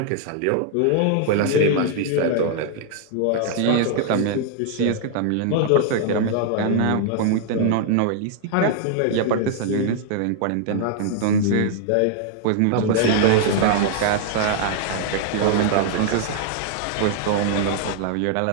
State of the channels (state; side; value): different; both; correlation -0.01